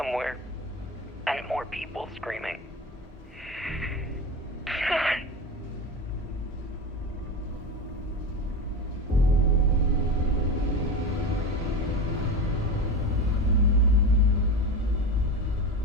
And more people screaming.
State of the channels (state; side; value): normal; both; correlation 0.24